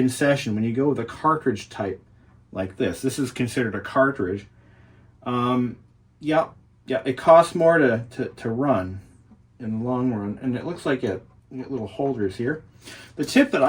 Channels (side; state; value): both; identical; correlation 1.00